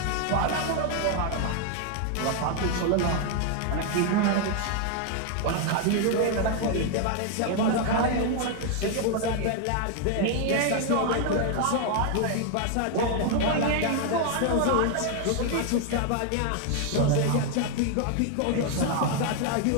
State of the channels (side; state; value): both; different; correlation 0.00